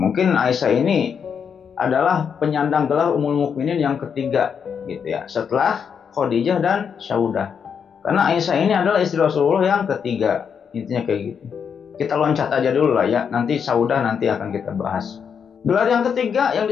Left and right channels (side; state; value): right; quieter; 7.0 dB